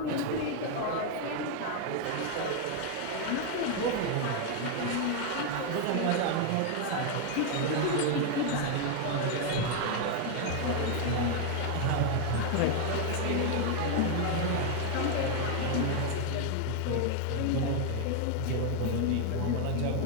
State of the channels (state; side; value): different; both; correlation 0.00